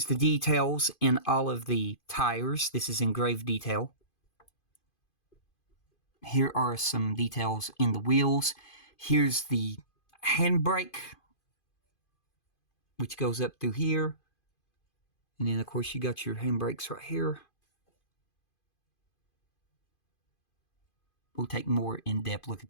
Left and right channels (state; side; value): late; right; 2.5 ms